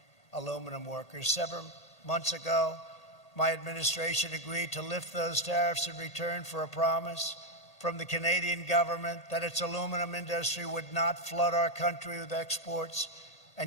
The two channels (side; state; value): right; late; 1.8 ms